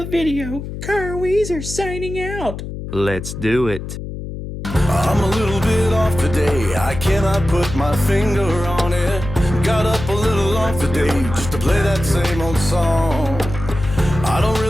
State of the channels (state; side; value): noise; left; hum, 8 dB below the sound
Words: video. Kyle Weezer signing out. Let's do it. I'm a little bit off today, I cannot put my finger on it. Got up a little off today, just to play that same old song. I don't